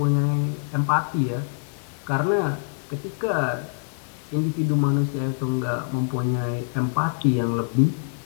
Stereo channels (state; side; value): silent; right; digital silence